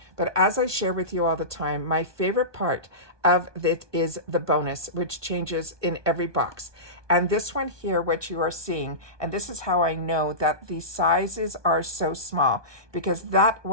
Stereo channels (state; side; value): late; left; 1.2 ms